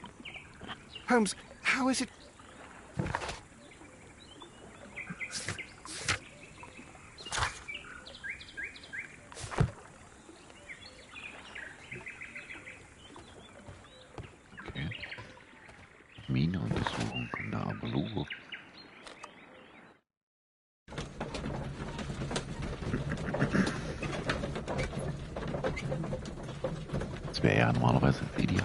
Holmes, how is it... Okay. Minenuntersuchung in der Ameluge. Das wäre ja normalerweise das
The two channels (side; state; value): both; identical; correlation 1.00